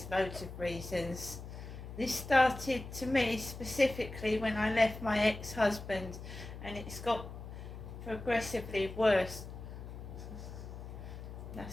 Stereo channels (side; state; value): left; noise; hum, 11 dB below the sound